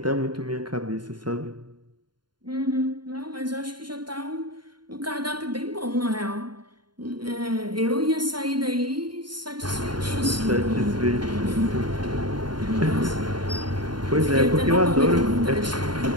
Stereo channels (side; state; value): left; late; 0.71 ms